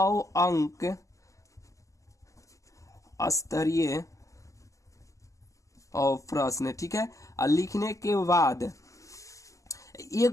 अंक स्तरीय और प्रश्न, ठीक है। और लिखने के बाद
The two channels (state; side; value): late; right; 0.16 ms